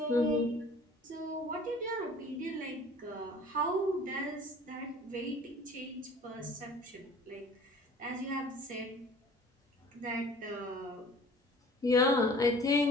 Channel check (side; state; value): both; normal; correlation 0.48